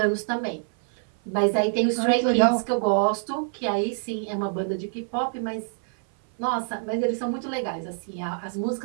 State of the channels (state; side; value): silent; left; 57 dB below the other